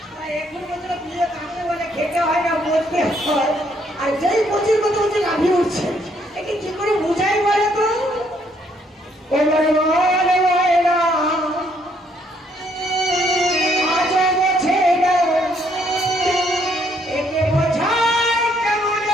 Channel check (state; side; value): normal; both; correlation 0.69